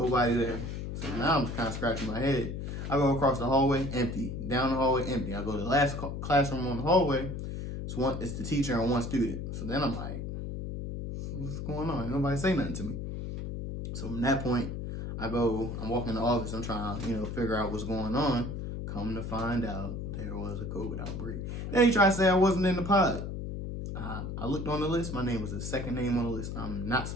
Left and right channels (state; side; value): noise; left; hum, 5 dB below the sound